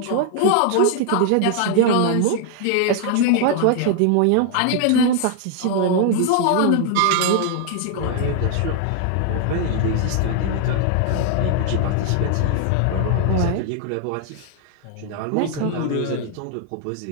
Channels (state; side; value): different; both; correlation 0.00